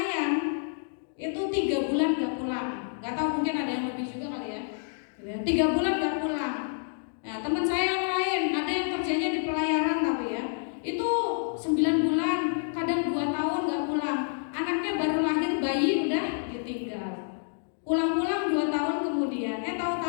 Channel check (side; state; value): right; silent; digital silence